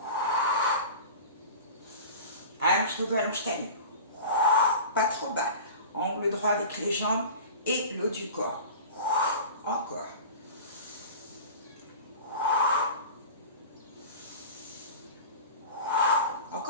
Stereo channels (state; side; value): inverted; both; correlation -0.35